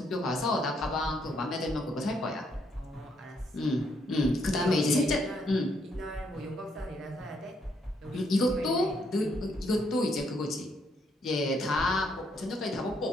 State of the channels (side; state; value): both; normal; correlation 0.73